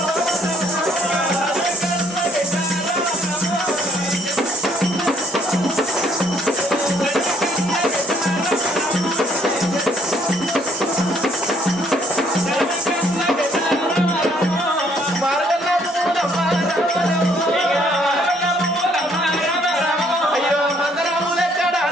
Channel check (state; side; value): normal; both; correlation 0.66